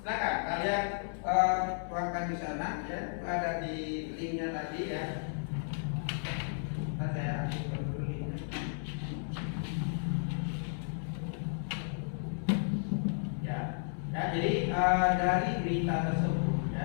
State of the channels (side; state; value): right; silent; 55 dB below the other